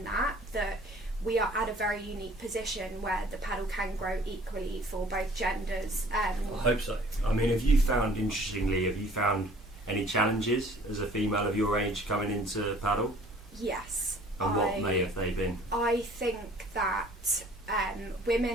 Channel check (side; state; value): both; normal; correlation 0.53